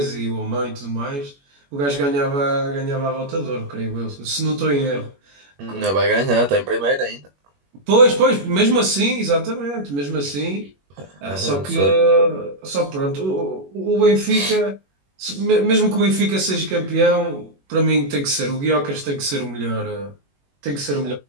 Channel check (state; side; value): late; left; 21 ms